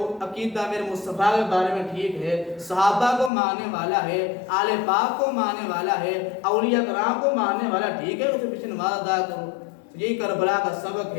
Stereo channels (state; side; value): drops out; right; at 3.3 s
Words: عقیدہ میرے مصطفیٰ کے بارے میں ٹھیک ہے، صحابہ کو ماننے والا ہے، آل پاک کو ماننے والا ہے، اولیاء کرام کو ماننے والا ٹھیک ہے، اسے پیچھے نماز ادا کرو۔ یہی کربلا کا سبق